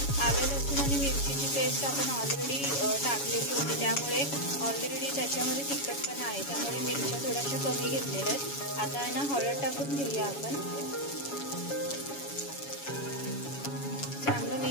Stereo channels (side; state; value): right; late; 7.1 ms